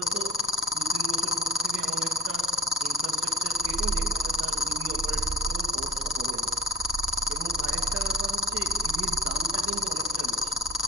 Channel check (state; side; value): normal; both; correlation 0.43